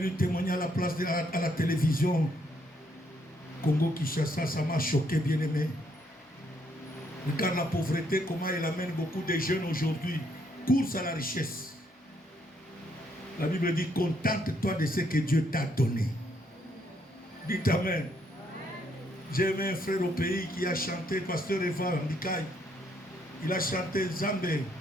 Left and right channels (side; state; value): both; normal; correlation 0.72